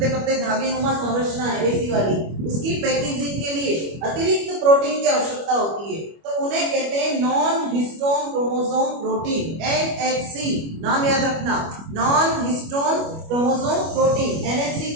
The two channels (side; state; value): left; late; 25 ms